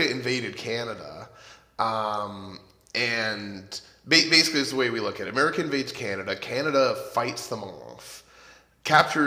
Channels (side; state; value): both; identical; correlation 1.00